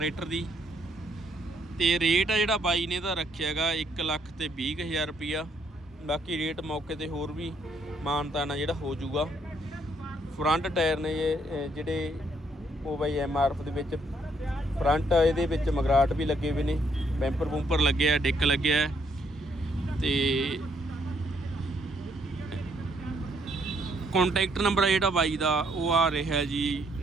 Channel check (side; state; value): both; normal; correlation 0.70